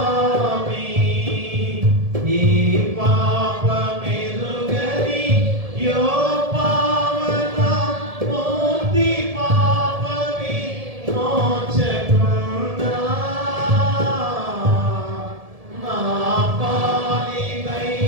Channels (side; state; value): left; late; 1.7 ms